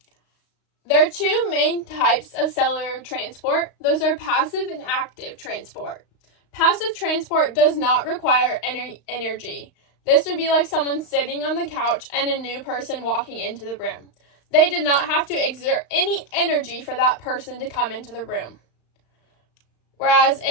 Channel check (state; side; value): late; right; 35 ms